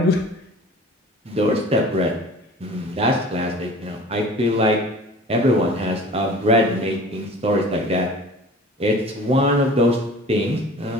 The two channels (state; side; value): normal; both; correlation 0.43